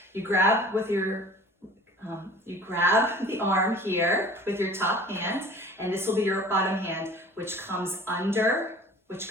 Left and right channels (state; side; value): normal; both; correlation 0.45